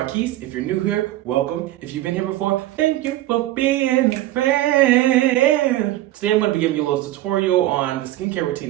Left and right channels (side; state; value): left; quieter; 15.2 dB